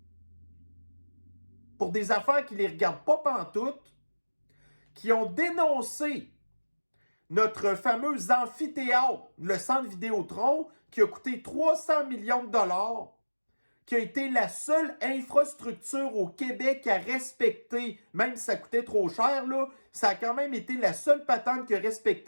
pour des affaires qui les regardent pas pantoute, qui ont dénoncé notre fameux amphithéâtre, le centre Vidéotron, qui a coûté 300 millions de dollars, qui a été la seule infrastructure au Québec à respecter, même si ça coûtait trop cher, là, ça a quand même été la seule patente qui a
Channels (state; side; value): inverted; both; correlation -1.00